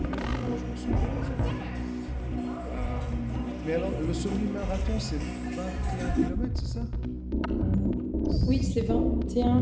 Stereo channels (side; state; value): both; identical; correlation 1.00